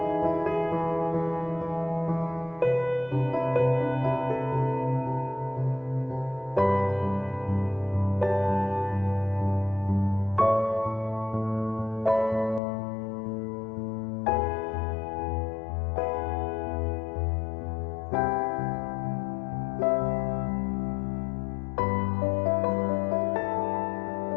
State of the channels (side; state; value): right; drops out; at 12.6 s